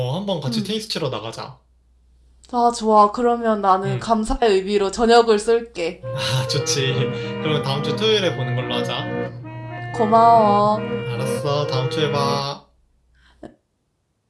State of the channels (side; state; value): both; identical; correlation 1.00